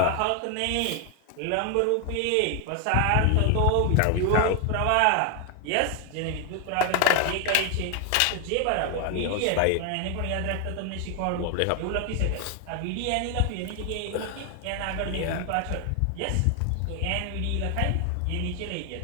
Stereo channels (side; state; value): both; different; correlation 0.00